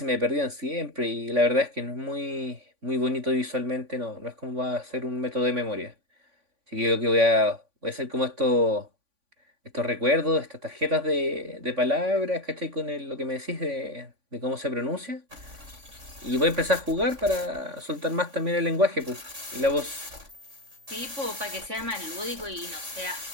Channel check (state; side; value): late; left; 3.5 ms